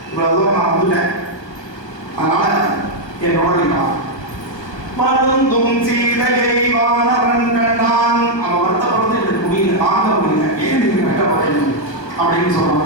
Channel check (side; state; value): right; late; 1.3 ms